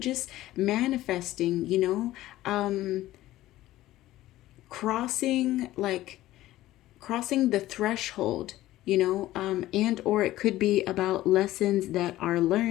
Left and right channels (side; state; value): right; quieter; 15.5 dB